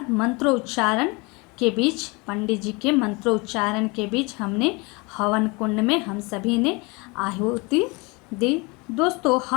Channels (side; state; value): right; quieter; 27.2 dB